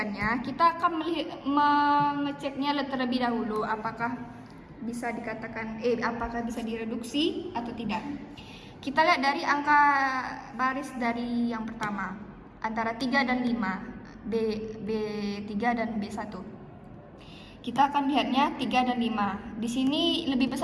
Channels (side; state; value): both; identical; correlation 1.00